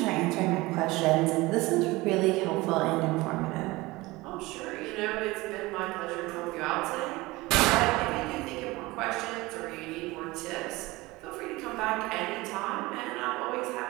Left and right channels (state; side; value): quieter; left; 21.1 dB